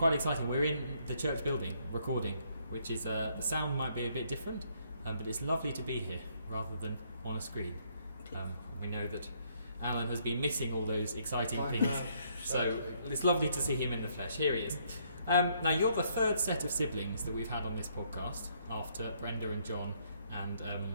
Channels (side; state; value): both; inverted; correlation -0.69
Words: exciting. We're in the church building recording, which is, the sound might be a bit different, but it's lovely to be here rather than on a screen. We know that Alan has been missing all those exciting things, so it's lovely to see him in the flesh. Here he is. Now, you're the third set of siblings that we've had on this podcast, after Brenda and John and